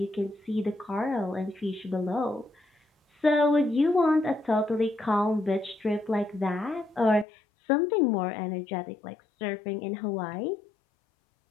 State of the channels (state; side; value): drops out; right; at 7.2 s